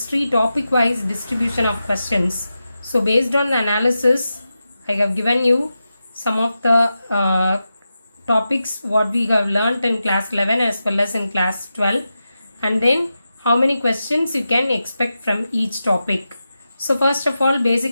topic wise distribution of questions. So based on the analysis, I have given you some of the topics what we have learnt in class 11 as well as in class 12, and then how many questions you can expect from each topic. So first of all,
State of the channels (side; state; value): both; inverted; correlation -0.91